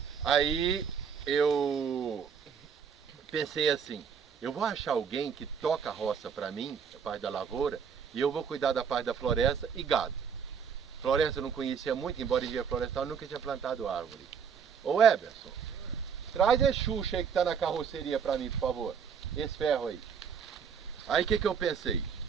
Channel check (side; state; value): left; quieter; 6.8 dB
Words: Aí eu pensei assim, eu vou achar alguém que toca a roça para mim, a parte da lavoura, e eu vou cuidar da parte da floresta e gado. Floresta eu não conhecia muito, embora engenheiro florestal, eu nunca tinha plantado árvore. Ô Eberson, traz esse Xuxa aí que está na carroceria para mim, por favor. Esse ferro aí. Aí o que eu pensei?